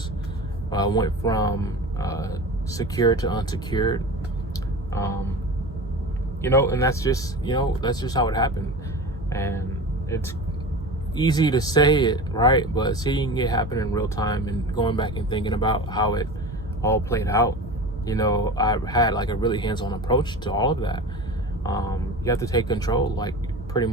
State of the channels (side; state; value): both; normal; correlation 0.32